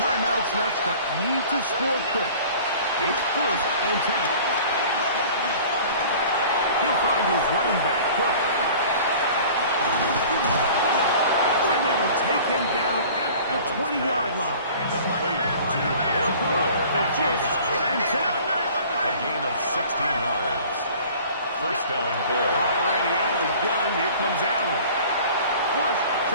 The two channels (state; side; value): inverted; both; correlation -0.46